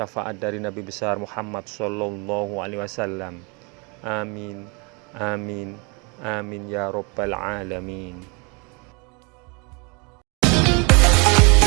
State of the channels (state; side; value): quieter; left; 31.1 dB